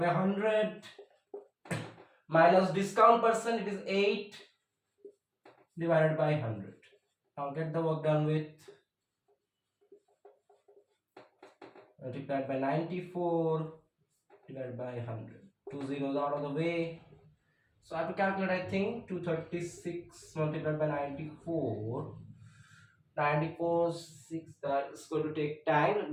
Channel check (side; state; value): both; identical; correlation 1.00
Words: 100 minus discount percent, it is 8 divided by 100. Now get the work done with. Multiplied by 94 divided by 100. 2 zeros out of the way. So I have to calculate, I think 236 multiplied by 94. 94, 6, that is going to take time. Let